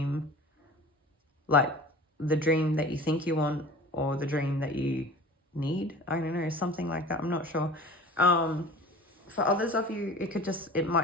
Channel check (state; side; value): normal; both; correlation 0.40